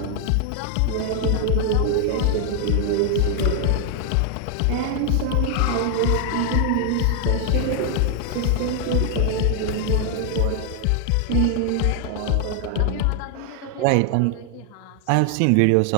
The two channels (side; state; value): both; different; correlation 0.00